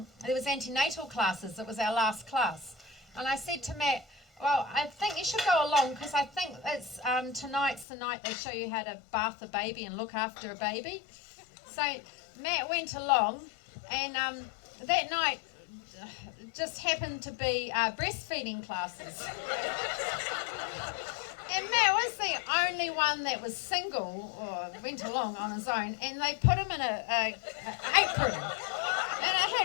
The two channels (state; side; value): drops out; right; at 7.9 s